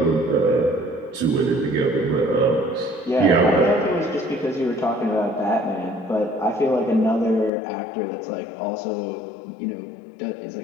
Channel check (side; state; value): right; drops out; at 7.5 s